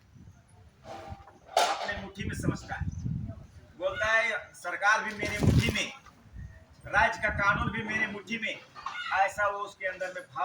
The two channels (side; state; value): both; identical; correlation 1.00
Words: अपने मुट्ठी में समझता है। बोलता है सरकार भी मेरे मुट्ठी में, राज्य का कानून भी मेरे मुट्ठी में, ऐसा वो उसके अंदर में